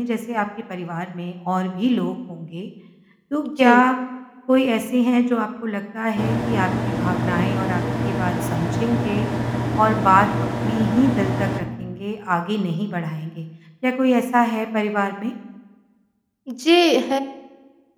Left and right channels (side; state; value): both; identical; correlation 1.00